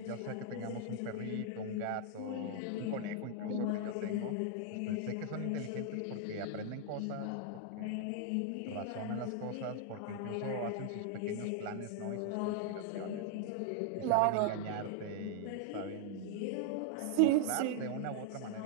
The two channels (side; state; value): both; different; correlation 0.00